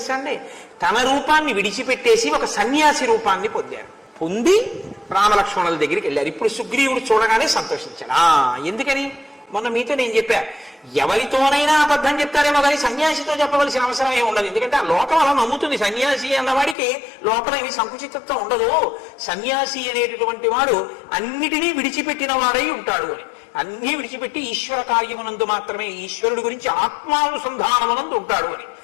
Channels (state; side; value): drops out; right; at 16.8 s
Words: అండి, తన రూపాన్ని విడిచిపెట్టేసి ఒక సన్యాసి రూపాన్ని పొందారు. పొంది రామలక్ష్మణుల దగ్గరికి వెళ్ళారు. ఇప్పుడు సుగ్రీవుడు చూడగానే సంతోషించాడు. ఎందుకని మొన్న మీతో నేను చెప్పా, ఎవరితోనైనా అబద్ధం చెప్తారేమో కానీ సన్యాసితో చెప్పవలసిన అవసరం ఏమి ఉండదు. ఎందుకంటే ఆ లోకం అలా నమ్ముతుంది. సన్యాసి అన్నవాడికి లోపల ఏమి సంకుచితత్వం ఉండదు. సన్యాసి అనేటటువంటి వాడు అన్నిటినీ విడిచిపెట్టిన వాడై ఉంటాడు అని. అన్నీ విడిచిపెట్టి ఈశ్వర కార్యమునందు మాత్రమే, ఈశ్వరుడు గురించి ఆత్మానుసంధానమునందు ఉంటాడు అని.